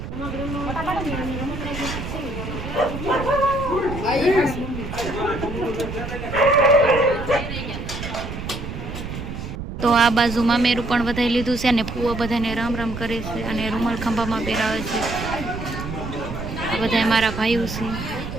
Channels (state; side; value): noise; right; rumble, 7 dB below the sound